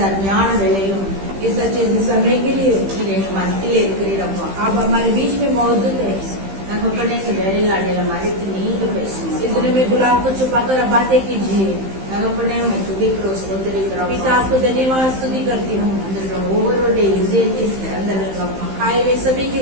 ஞான வேளையிலும் इस अच्छे से समय के लिए நீர் எங்க மத்தியில் இருக்கிறீரப்பா. आप हमारे बीच में मौजूद है। தகப்பனே இந்த வேலையில் அடையில மறைத்து நீங்க பேசுங்க. इस दिन में गुलाब को छुपाकर बातें कीजिए। தகப்பனே உம்மை துதிக்கிறோம், ஸ்தோத்திரிக்கிறோம். पिता आपको धन्यवाद स्तुति करती हूँ। அந்த ஒவ்வொருடைய இதயத்தை திறந்தருங்கப்பா. आए वे सभी के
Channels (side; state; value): left; late; 15 ms